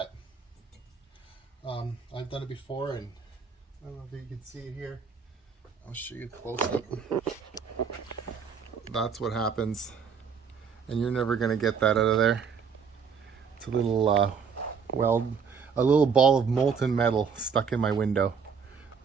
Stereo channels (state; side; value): quieter; left; 6.2 dB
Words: I've done it before, and I don't know if you can see it here. I'll show you close up. That's what happens, and you're never gonna get that out of there. It's a little a little ball of molten metal stuck in my window.